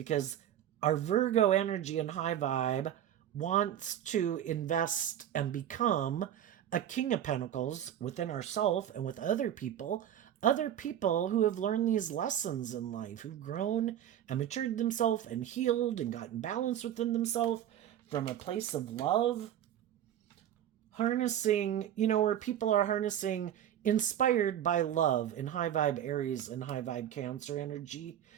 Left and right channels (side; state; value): left; quieter; 10.7 dB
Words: our Virgo energy and high vibe wants to invest and become a King of Pentacles within ourselves and with other people who have learned these lessons in life, who've grown and matured themselves and healed and gotten balance within themselves from a place of love. Harnessing, where people are harnessing, inspired by love in high vibe Aries and high vibe Cancer energy,